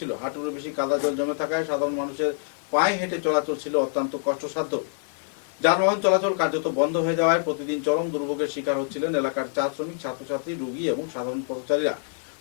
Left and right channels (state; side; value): silent; right; digital silence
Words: হাঁটুর বেশি কাদা জল জমে থাকায় সাধারণ মানুষের পায়ে হেঁটে চলাচল ছিল অত্যন্ত কষ্টসাধ্য। যানবাহন চলাচল কার্যত বন্ধ হয়ে যাওয়ায় প্রতিদিন চরম দুর্ভোগের শিকার হচ্ছিলেন এলাকার চা শ্রমিক, ছাত্রছাত্রী, রোগী এবং সাধারণ পথচারীরা।